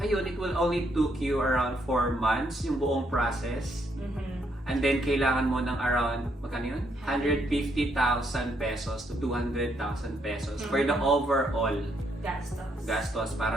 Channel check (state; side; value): normal; both; correlation 0.74